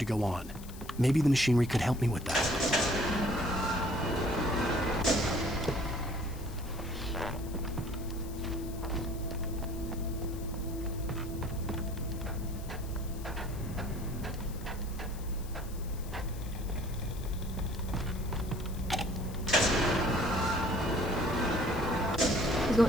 go on. Maybe the machinery could help me with that. It's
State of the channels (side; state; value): left; noise; hiss, 18 dB below the sound